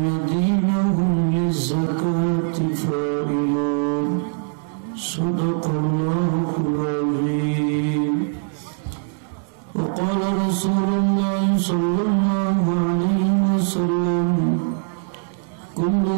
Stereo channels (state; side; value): silent; left; 64 dB below the other